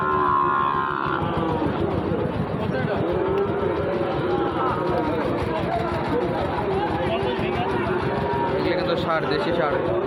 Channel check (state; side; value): identical; both; correlation 1.00